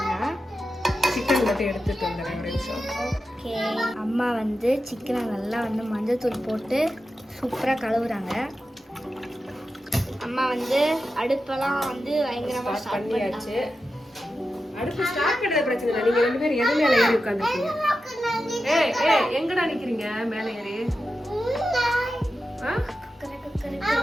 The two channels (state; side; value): normal; both; correlation 0.91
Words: சிக்கன் மட்டும் எடுத்துட்டு வந்துடுறேன் ஒரு நிமிஷம். ஓகே, அம்மா வந்து சிக்கனை நல்லா வந்து மஞ்சள் தூள் போட்டு சூப்பராக கழுவுறாங்க. அம்மா வந்து அடுப்பெல்லாம் வந்து பயங்கரமாக ஸ்டார்ட் பண்ணியாச்சு. அடுப்பு ஸ்டார்ட் பண்ணுறது பிரச்சனை இல்லை. நீங்கள் ரெண்டு பேரும் எது மேலே ஏறி உட்காந்துருக்கீங்க? ஏய் ஏய் எங்கடா நிக்கிறீங்க மேல ஏறி? ஆ?